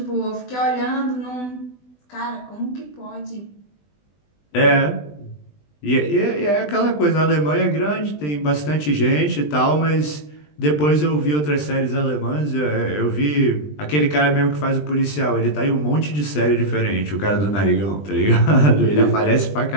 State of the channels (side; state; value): right; late; 20 ms